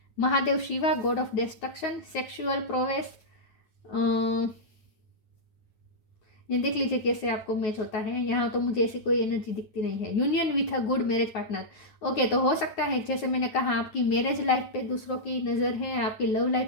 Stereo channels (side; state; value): right; late; 9.4 ms